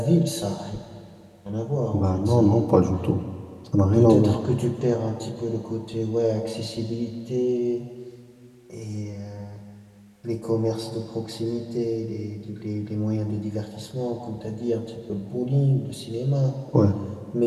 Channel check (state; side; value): identical; both; correlation 1.00